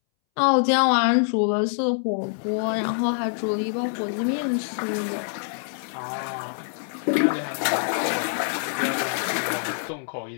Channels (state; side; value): silent; right; 62 dB below the other